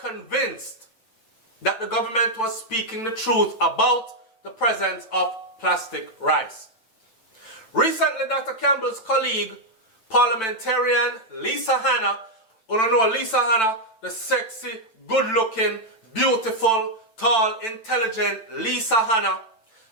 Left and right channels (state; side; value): late; right; 9.0 ms